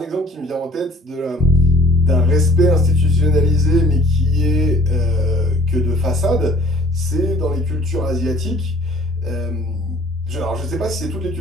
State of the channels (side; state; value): both; normal; correlation 0.54